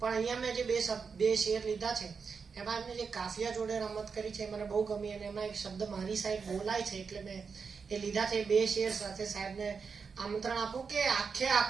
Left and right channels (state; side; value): quieter; left; 5.5 dB